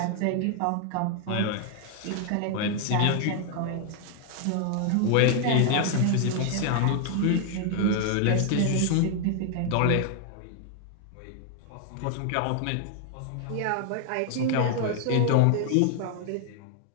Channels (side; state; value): both; different; correlation 0.00